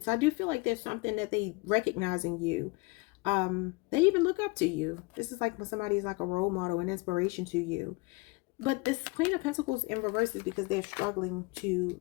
So I do feel like there's something that they recognize in you. They even look up to you. This is like when somebody is like a role model, an inspiration to you. But this Queen of Pentacles in reverse is because they're struggling to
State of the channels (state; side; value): quieter; right; 26.1 dB